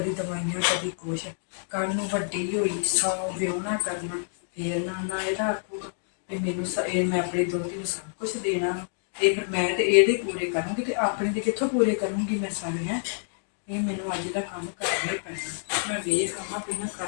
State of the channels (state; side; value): silent; right; digital silence